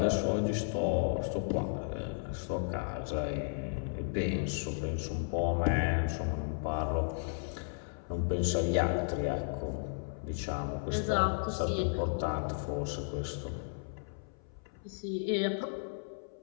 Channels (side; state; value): right; silent; 55 dB below the other